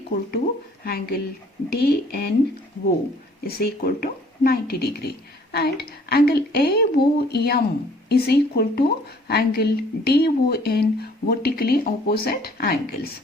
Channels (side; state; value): both; normal; correlation 0.57